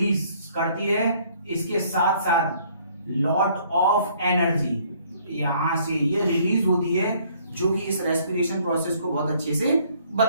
करती है। इसके साथ साथ लॉट ऑफ एनर्जी यहां से ये रिलीज होती है, जो कि इस रेस्पिरेशन प्रोसेस को बहुत अच्छे से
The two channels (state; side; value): inverted; both; correlation -0.62